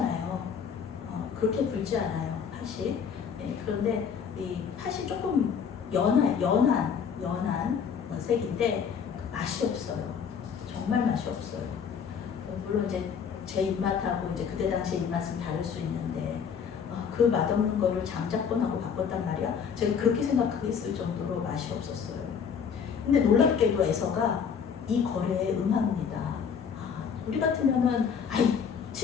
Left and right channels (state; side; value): quieter; right; 6.9 dB